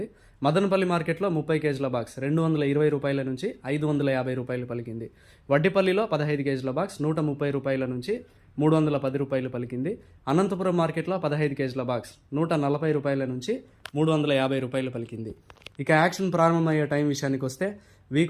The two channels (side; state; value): both; identical; correlation 1.00